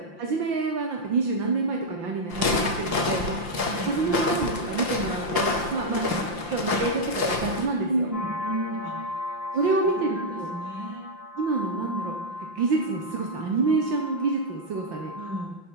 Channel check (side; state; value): left; late; 5.8 ms